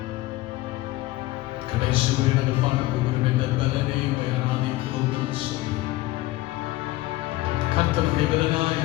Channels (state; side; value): quieter; right; 18.0 dB